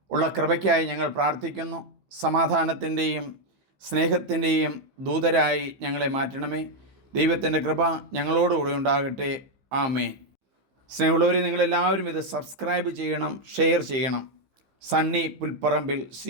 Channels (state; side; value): late; left; 15 ms